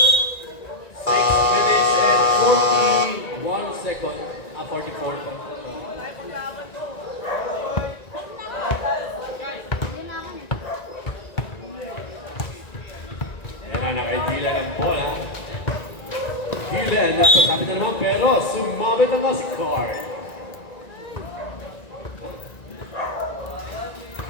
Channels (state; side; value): late; right; 1.9 ms